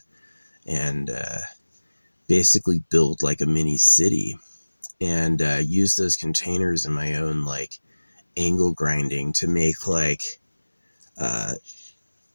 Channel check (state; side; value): inverted; both; correlation -1.00